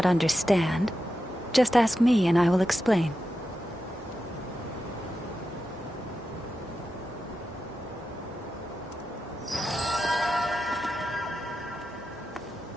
understand, just ask me and I will explain.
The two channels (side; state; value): both; normal; correlation 0.90